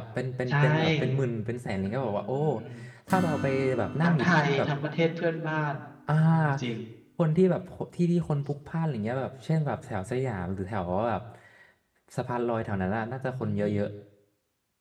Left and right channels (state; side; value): identical; both; correlation 1.00